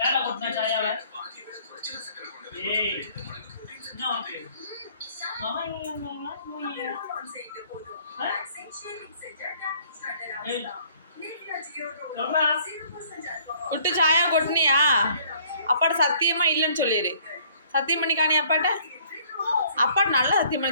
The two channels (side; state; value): both; inverted; correlation -0.59